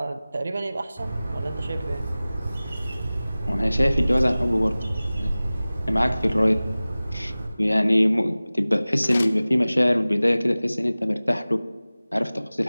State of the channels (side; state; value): both; inverted; correlation -0.98